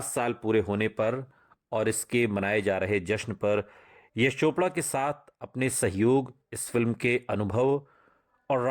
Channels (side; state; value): both; identical; correlation 1.00